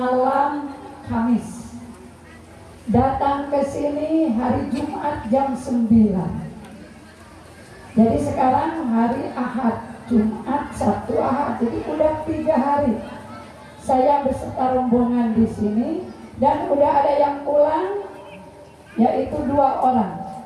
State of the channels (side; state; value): both; identical; correlation 1.00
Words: Kamis, datang ke sini hari Jumat jam 9. Jadi sekarang hari Ahad, Jumat, Sabtu, Ahad, jadi udah 3 hari saya beserta rombongan di sini, dan udah ada yang pulang, yaitu 2 orang.